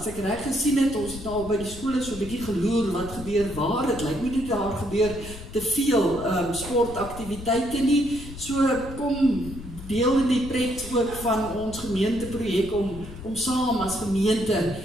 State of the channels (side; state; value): left; noise; rumble, 13 dB below the sound